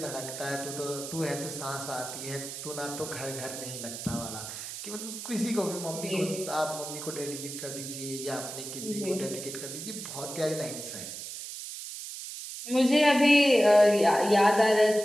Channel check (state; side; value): noise; right; hiss, 9 dB below the sound